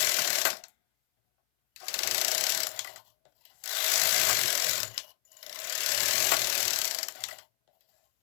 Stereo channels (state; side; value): silent; right; 58 dB below the other